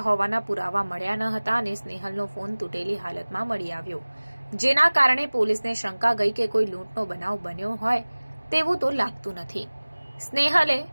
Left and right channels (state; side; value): inverted; both; correlation -1.00